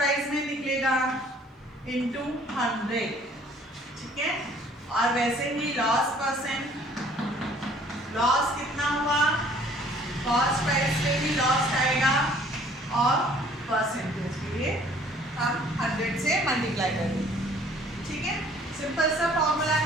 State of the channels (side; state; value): both; normal; correlation 0.56